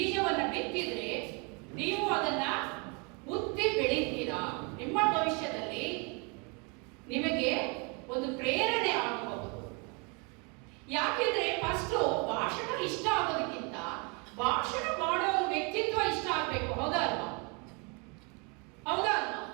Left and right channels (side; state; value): left; quieter; 31.9 dB